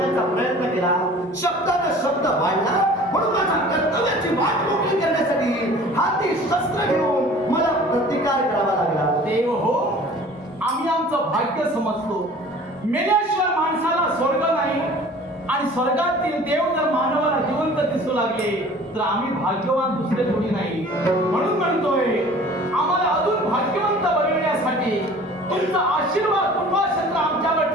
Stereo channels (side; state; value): both; normal; correlation 0.46